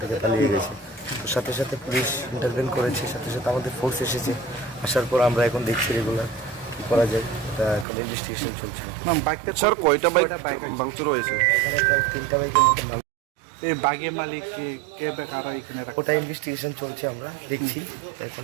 থেকে পালিয়ে গেছে। তো সাথে সাথে পুলিশ ইন্টারভেন করেছে, সাথে সাথে আমাদের ফোর্স এসেছে। আসার পর আমরা এখন দেখছি রেগুলার কী করা যায়, এটা এখন ইনভেস্টিগেশন চলছে। স্যার কয়টা বাইক ভাঙচুর হয়েছে? এখানে প্রায় 3টা বাইকের মতো এই বাগের মালিক কে কারা এখানে ওটা ইনভেস্টিগেশন চলছে, আমরা দেখছি। এখন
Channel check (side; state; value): left; drops out; at 7.9 s